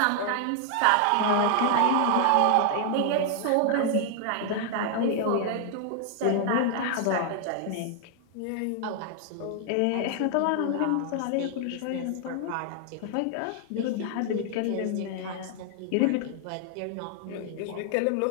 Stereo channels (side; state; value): both; different; correlation 0.00